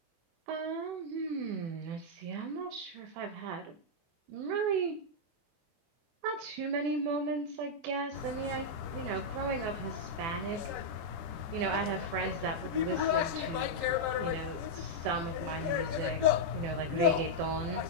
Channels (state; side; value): late; left; 23 ms